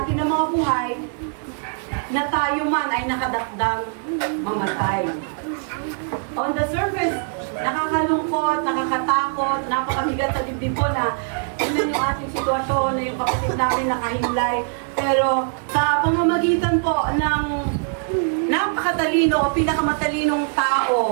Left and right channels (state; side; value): silent; left; 64 dB below the other